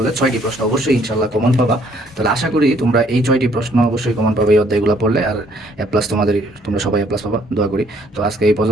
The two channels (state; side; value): normal; both; correlation 0.64